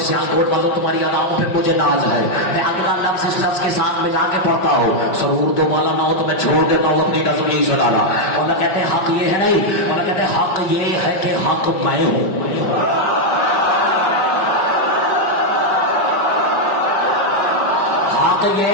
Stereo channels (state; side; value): late; right; 5.1 ms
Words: سیاہ کوٹ والوں تمہاری اداؤں پہ مجھے ناز ہے. میں اگلا لفظ اس لفظ کے ساتھ ملا کے پڑھتا ہوں. سرور دو مالا نہ ہو تو میں چھوڑ دیتا ہوں اپنی نظر نہیں سے ڈالا. اور کہتے ہیں حق یہ ہے نہیں. اور کہتے ہیں حق یہ ہے کہ حق میں ہوں. حق